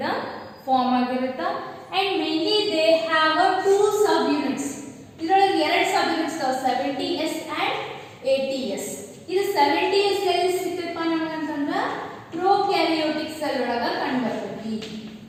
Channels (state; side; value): identical; both; correlation 1.00